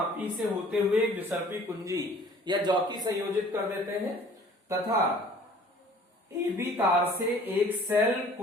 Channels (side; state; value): both; normal; correlation 0.51